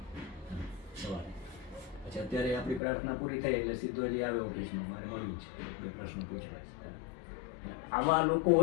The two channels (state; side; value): drops out; right; at 2.8 s